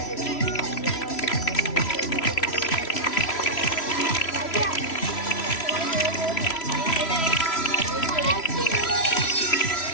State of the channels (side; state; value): right; late; 3.0 ms